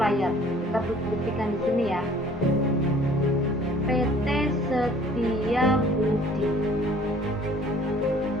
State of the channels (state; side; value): normal; both; correlation 0.54